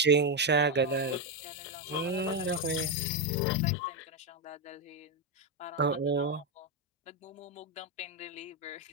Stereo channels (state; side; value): normal; both; correlation 0.06